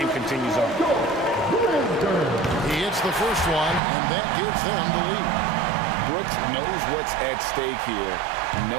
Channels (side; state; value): left; drops out; at 3.8 s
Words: continues on. He hits the first one, and that gives them the lead. Brooks knows what's at stake here.